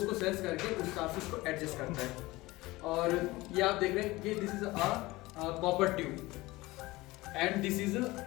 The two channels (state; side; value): quieter; right; 20.2 dB